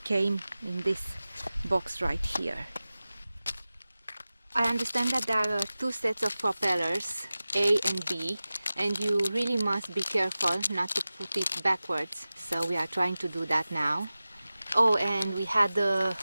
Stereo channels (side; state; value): both; inverted; correlation -0.96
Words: came in this box right here. I understand that there are 2 sets of propellers, A and B, and you really must be careful not to put it backwards, so we are trying to do that now. Oh, and we